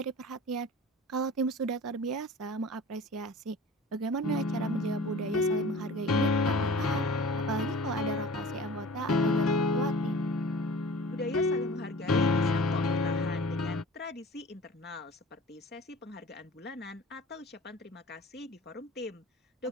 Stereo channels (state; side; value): normal; both; correlation 0.41